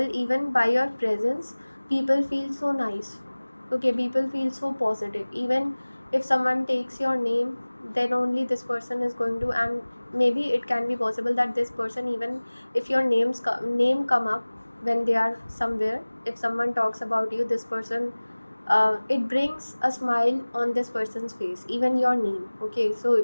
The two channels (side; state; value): both; inverted; correlation -1.00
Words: even by your presence, people feel so nice. Okay, people feel so positive. Even if someone takes your name, then only this person is going to, and maybe it can be possible that this person, even if your name come up when they are somewhere, if someone talks about you, this person, it brings a smile on this person's face, even your name. Okay,